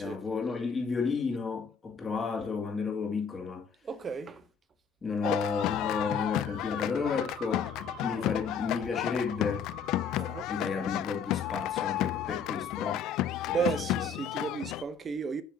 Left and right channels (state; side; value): quieter; right; 5.4 dB